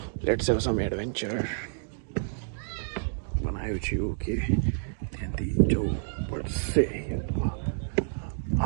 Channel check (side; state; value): left; silent; digital silence